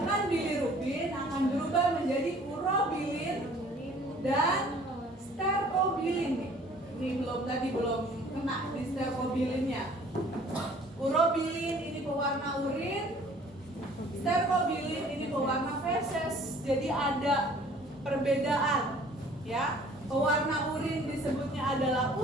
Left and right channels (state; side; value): normal; both; correlation 0.53